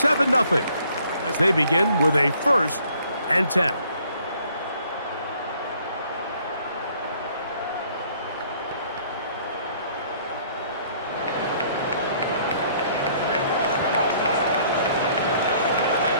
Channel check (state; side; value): inverted; both; correlation -0.60